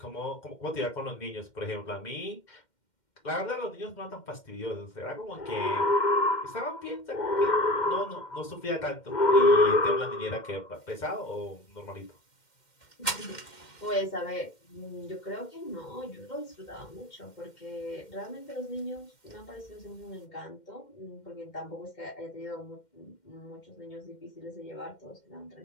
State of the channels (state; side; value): late; right; 2.1 ms